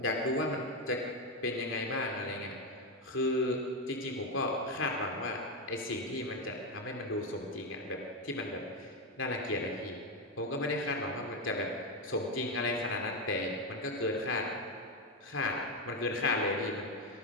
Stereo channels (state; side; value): normal; both; correlation 0.09